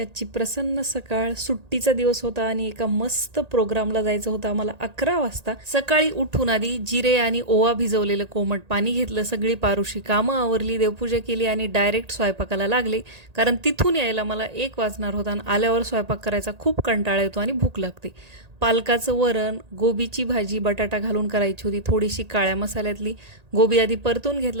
प्रसन्न सकाळ. सुट्टीचा दिवस होता आणि एका मस्त प्रोग्रामला जायचं होतं आम्हाला 11 वाजता. सकाळी उठून आधी जिरे आणि ओवा भिजवलेलं कोमट पाणी घेतलं, सगळी पारुशी कामं आवरली, देवपूजा केली आणि डायरेक्ट स्वयंपाकाला लागले. कारण तिथून यायला मला 1 वाजणार होता आणि आल्यावर स्वयंपाक करायचा खूप कंटाळा येतो आणि भूक लागते. पालकाचं वरण, गोबीची भाजी बटाटा घालून करायची होती, थोडीशी काळ्या मसाल्यातली. गोबी आधी परतून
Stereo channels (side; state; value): left; late; 1.8 ms